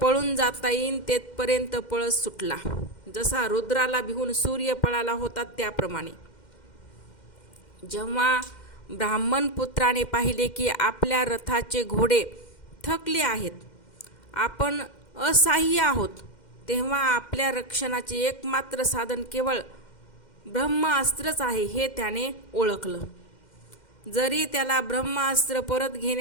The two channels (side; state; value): right; late; 2.1 ms